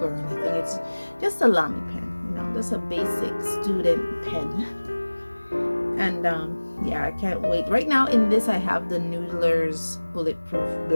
anything. It's just a Lamy pen, you know, just a basic student pen. And yeah, I can't wait. Right now in this I have the Noodler's bulletproof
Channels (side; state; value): both; inverted; correlation -1.00